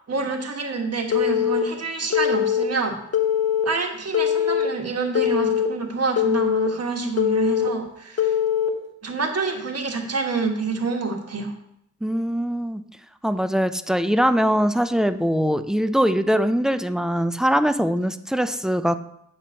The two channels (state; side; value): normal; both; correlation 0.43